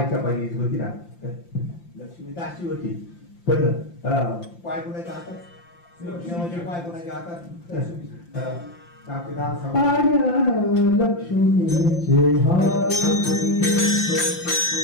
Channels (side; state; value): right; late; 5.8 ms